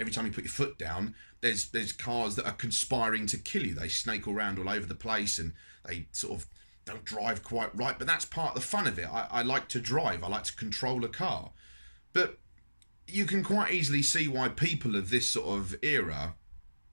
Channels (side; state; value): both; inverted; correlation -1.00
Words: time you put your foot down, there's cars that are conspiring to kill you. They snake around all over the place, and they sort of don't drive quite right. But that's part of the fun of it. I like to drive. I like to control a car. But you can quite easily see why people of this sort of era